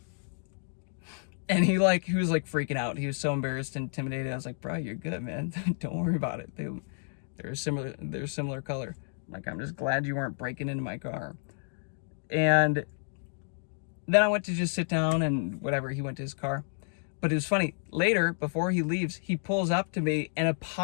And he was like freaking out. He was so embarrassed and intimidated. I was like, bro, you're good, man. Don't worry about it. They're similar color. Like, I'm just glad you weren't breaking into my car. And then I went to just sit down and whatever, he went to his car. But it was funny. Later, before he leaves, he pulls up to me and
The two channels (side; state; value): right; silent; digital silence